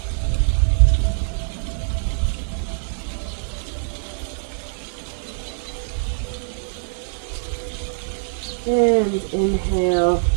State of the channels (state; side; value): silent; left; 63 dB below the other